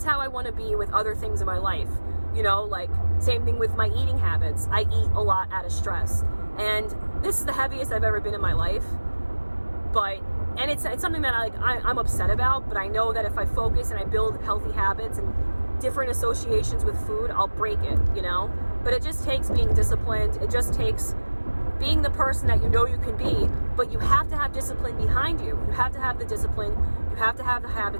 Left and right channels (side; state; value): both; inverted; correlation -1.00